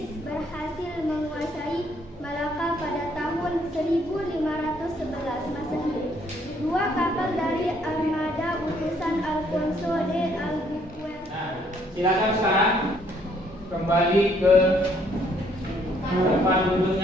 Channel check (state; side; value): normal; both; correlation 0.66